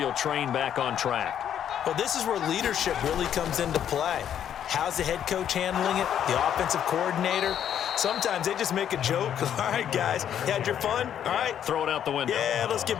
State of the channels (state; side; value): quieter; right; 9.6 dB